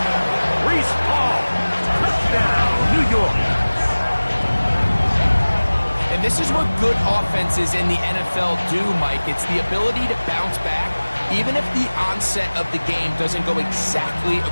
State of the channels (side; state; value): both; inverted; correlation -1.00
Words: Reese Hall. Touchdown, New York. And this is what good offenses in the NFL do, Mike. It's the ability to bounce back, even if the onset of the game doesn't go exactly